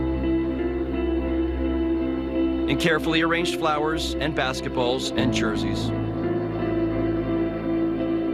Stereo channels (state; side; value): identical; both; correlation 1.00